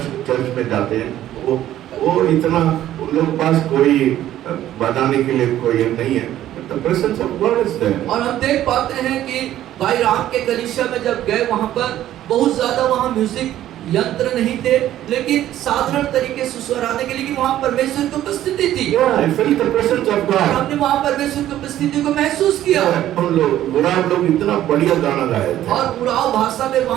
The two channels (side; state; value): left; quieter; 12.8 dB